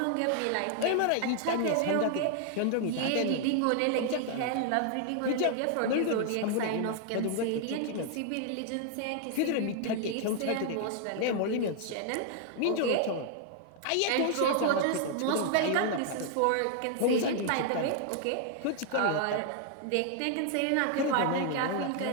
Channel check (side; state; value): both; different; correlation 0.00